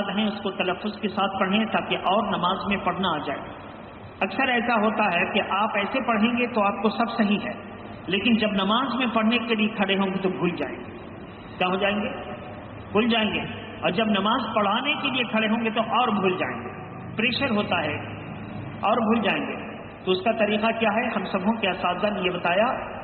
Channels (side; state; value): both; identical; correlation 1.00